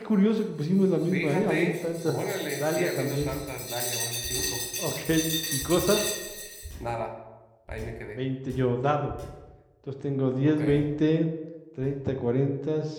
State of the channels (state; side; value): identical; both; correlation 1.00